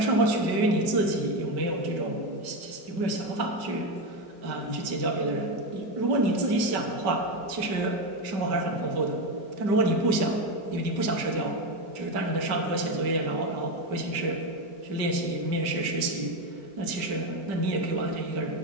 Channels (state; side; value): late; left; 5.2 ms